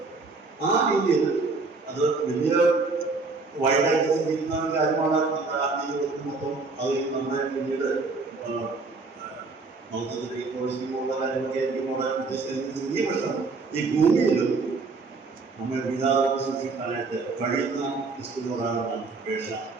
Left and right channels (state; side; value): quieter; left; 4.0 dB